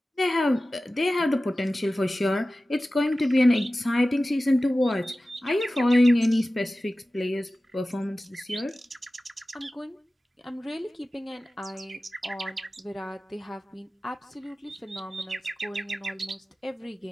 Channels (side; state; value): both; normal; correlation 0.95